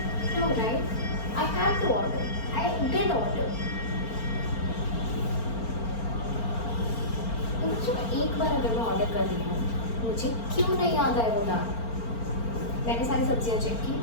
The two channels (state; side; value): late; right; 4.4 ms